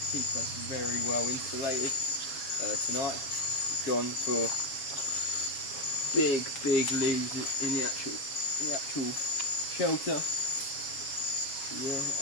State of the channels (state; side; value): late; right; 7.3 ms